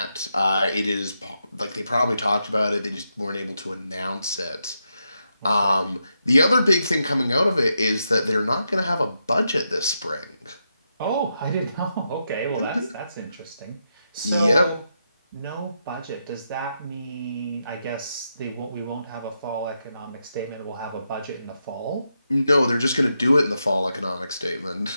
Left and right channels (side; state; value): both; inverted; correlation -0.84